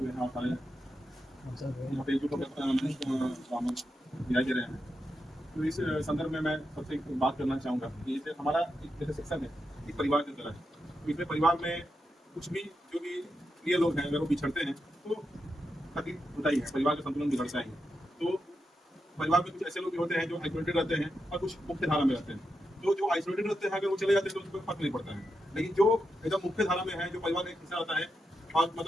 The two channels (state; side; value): normal; both; correlation 0.86